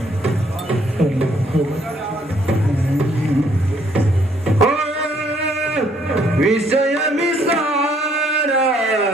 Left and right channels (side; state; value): both; normal; correlation 0.66